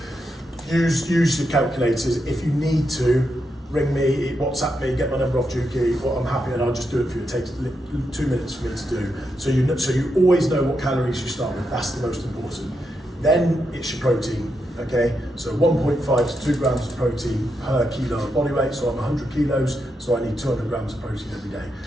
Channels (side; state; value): both; normal; correlation 0.83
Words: use your calculators. If you need to, ring me, WhatsApp me, get my number off Juki. Well, I'm happy and I'll just do it for you. It takes 2 minutes for me to do. So you always know what calories you start with. That's the most important. Then it's your protein, okay? So 1.5 to 2 grams of protein per kilo of body weight. So I'm 100 kilos, so I need 200 grams of protein every day.